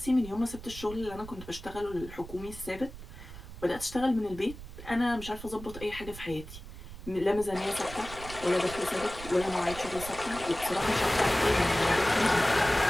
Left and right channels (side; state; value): right; noise; rumble, 13 dB below the sound